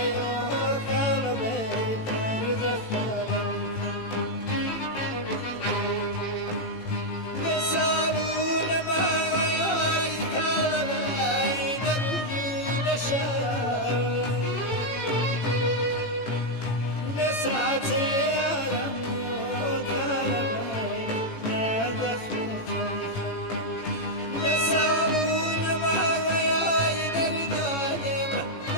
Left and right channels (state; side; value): late; right; 18 ms